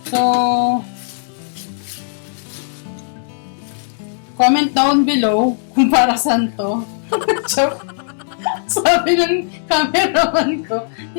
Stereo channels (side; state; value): right; silent; digital silence